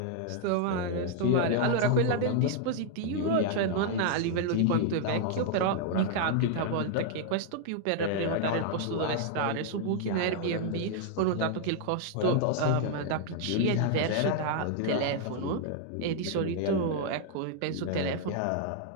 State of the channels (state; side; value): different; both; correlation 0.00